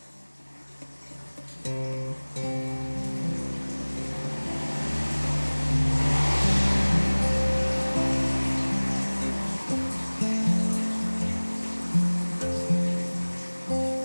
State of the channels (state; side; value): inverted; both; correlation -1.00